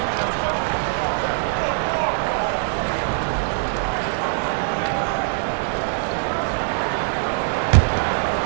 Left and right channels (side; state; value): left; silent; 64 dB below the other